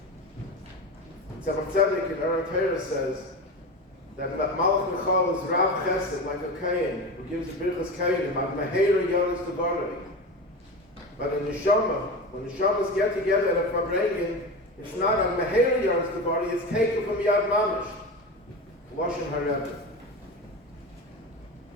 Tzemach Tzedek in Aaron Torah says that Malach Michal is Rav Chesed, like a Kayin, who gives Birchas Kayinim, Ad Meheira Yonis Devarei. But in neshama, when neshamas get together at a verbringing, it's not Ad Meheira Yonis Devarei, it's taken from Yad Mamish. Lashon HaRebbe.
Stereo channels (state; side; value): normal; both; correlation 0.25